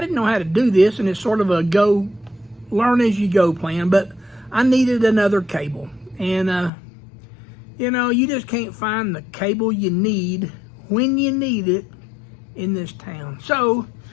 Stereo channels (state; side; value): drops out; right; at 6.7 s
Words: know how to do this, and it's sort of a learn as you go plan, but I needed another cable. And, you know, you just can't find the cable you need when you need it in this town. So